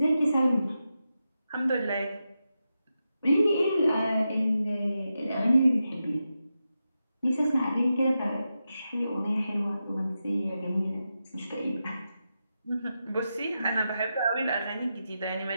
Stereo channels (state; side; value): inverted; both; correlation -0.88